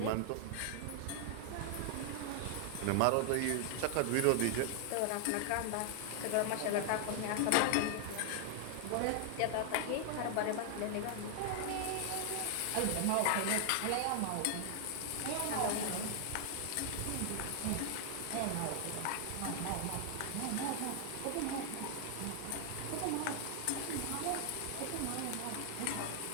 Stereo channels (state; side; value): different; both; correlation 0.00